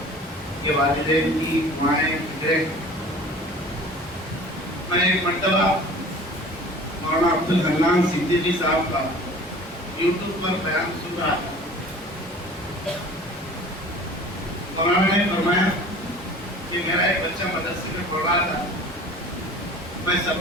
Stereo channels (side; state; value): both; normal; correlation 0.44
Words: یہ والدین کی دعائیں، فکریں. میں ایک مرتبہ مولانا عبدالحنان صدیقی صاحب کا یوٹیوب پر بیان سن رہا تھا. مولانا نے فرمایا کہ میرا ایک بچہ مدرسے میں پڑھ رہا تھا، میں